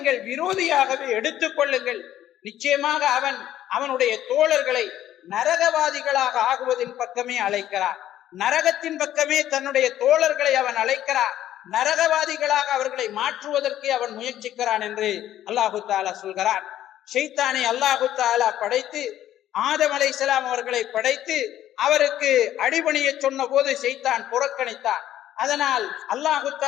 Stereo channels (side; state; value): right; quieter; 12.3 dB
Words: விரோதியாகவே எடுத்துக் கொள்ளுங்கள். நிச்சயமாக அவன் அவனுடைய தோழர்களை நரகவாதிகளாக ஆகுவதின் பக்கமே அழைக்கிறான், நரகத்தின் பக்கமே தன்னுடைய தோழர்களை அவன் அழைக்கிறான், நரகவாதிகளாக அவர்களை மாற்றுவதற்கு அவன் முயற்சிக்கிறான் என்று அல்லாஹு தஆலா சொல்கிறான். ஷைத்தானை அல்லாஹு தஆலா படைத்து ஆதம் அலைஹிஸ்ஸலாம் அவர்களை படைத்து அவருக்கு அடிபணிய சொன்ன போது ஷைத்தான் புறக்கணித்தான். அதனால் அல்லாஹு